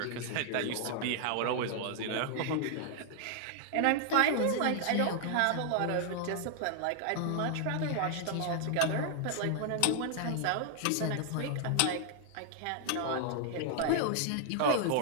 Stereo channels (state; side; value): different; both; correlation 0.00